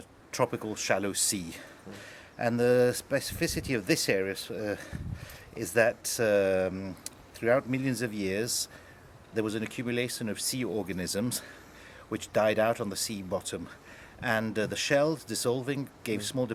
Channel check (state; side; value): identical; both; correlation 1.00